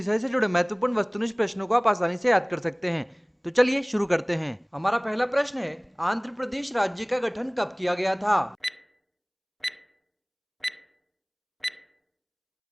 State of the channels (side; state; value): both; identical; correlation 1.00